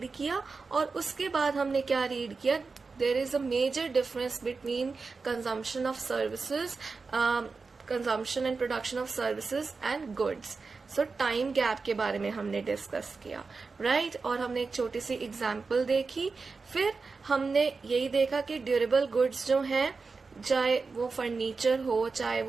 किया और उसके बाद हमने क्या रीड किया, there is a major difference between consumption of services, consumption and production of services and goods. So time gap के बारे में हमने डिस्कस किया, राइट। और हमने एक छोटी सी एग्जांपल देखी। फिर हमने यही देखा कि ड्यूरेबल गुड्स जो हैं, चाहे वो फर्नीचर हो, चाहे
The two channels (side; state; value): left; quieter; 4.4 dB